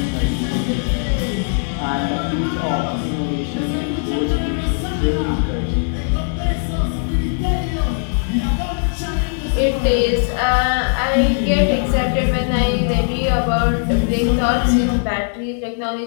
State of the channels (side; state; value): right; silent; 64 dB below the other